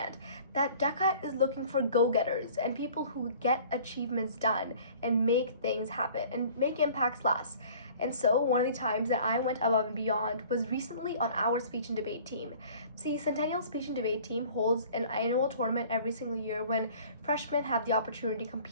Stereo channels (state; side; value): inverted; both; correlation -0.49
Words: that DECA is looking for go-getters and people who get achievements done and make things happen and make impacts last. And so one of the times that I went above and beyond was recently on our speech and debate team. See, Centennial Speech and Debate Team holds an annual tournament every single year when freshmen have the opportunity to